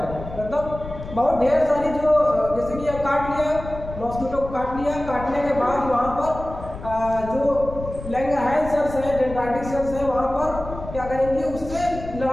मतलब बहुत ढेर सारी जो जैसे कि काट लिया, मॉस्किटो को काट लिया, काटने के बाद वहाँ पर जो लैंगरहैंस सेल्स है, डेंड्राइटिक सेल्स है, वहाँ पर क्या करेंगे, उससे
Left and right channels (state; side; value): noise; left; rumble, 11 dB below the sound